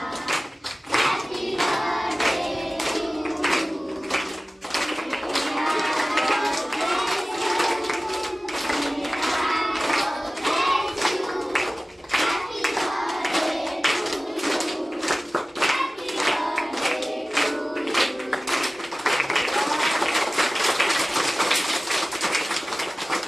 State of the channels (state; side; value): normal; both; correlation 0.97